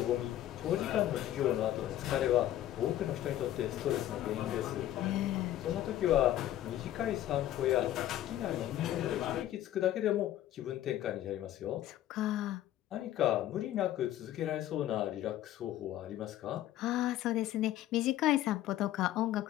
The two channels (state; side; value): quieter; right; 13.1 dB